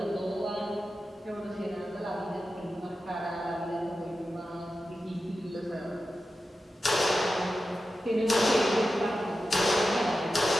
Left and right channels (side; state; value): both; normal; correlation 0.92